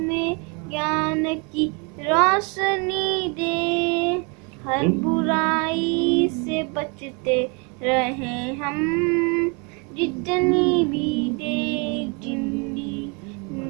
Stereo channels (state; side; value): quieter; left; 32.6 dB